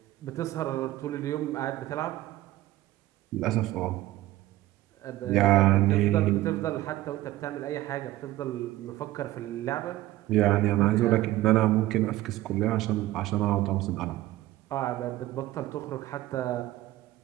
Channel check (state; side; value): quieter; left; 16.1 dB